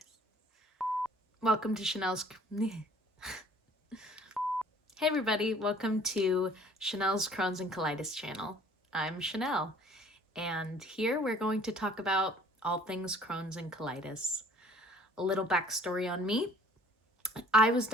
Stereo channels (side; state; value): both; normal; correlation 0.54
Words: Welcome to Chanel's... Hey everybody, welcome to Chanel's Crohn's and Colitis channel. I'm Chanel, and here we're going to talk about all things Crohn's and colitis. A little backstory on me. I was